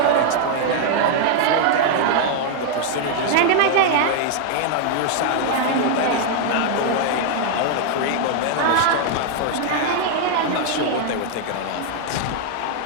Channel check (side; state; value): both; different; correlation 0.00